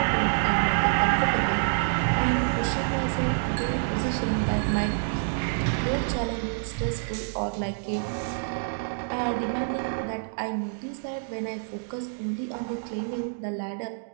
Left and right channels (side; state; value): left; silent; digital silence